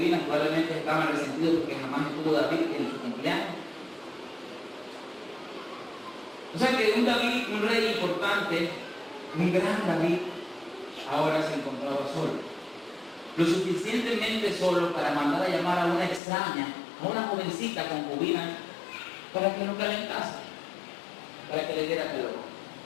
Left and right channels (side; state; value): right; drops out; at 16.2 s